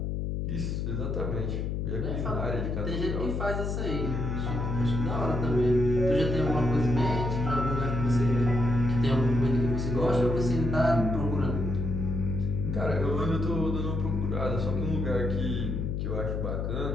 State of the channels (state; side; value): noise; left; hum, 1 dB below the sound